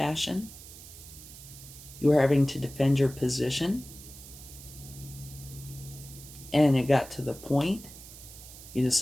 You were having to defend your position. And it got to the point you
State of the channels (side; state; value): right; noise; hiss, 16 dB below the sound